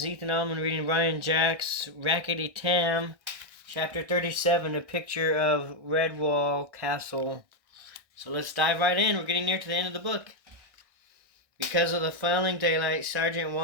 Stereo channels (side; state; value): left; late; 1.6 ms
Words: Ethan Allman reading Ryan Jack's Rackety Tam, Chapter 37, A Picture of Redwall Castle. So let's dive right in. We're getting near to the end of the book. Because of the failing daylight, Sergeant